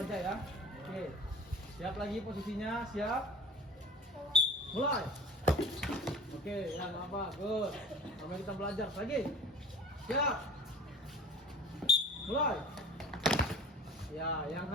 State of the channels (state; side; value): normal; both; correlation 0.41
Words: aja ya. Oke. Siap lagi posisinya, siap. Mulai. Oke, yang apa? Good. Sampai kita belajar lagi. Siap. Mulai. Ya, yang